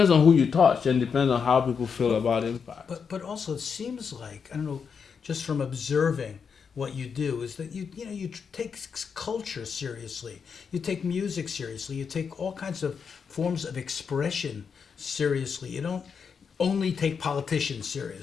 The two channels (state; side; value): quieter; right; 6.2 dB